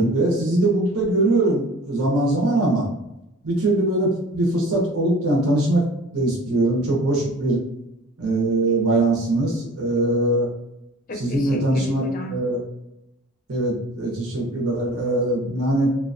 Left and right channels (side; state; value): both; normal; correlation 0.45